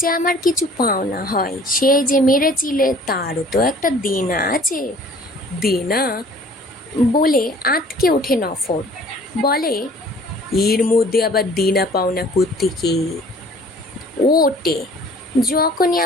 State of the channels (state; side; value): normal; both; correlation 0.52